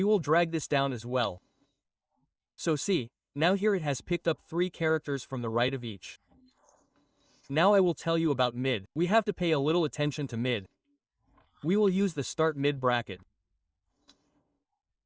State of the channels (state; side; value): identical; both; correlation 1.00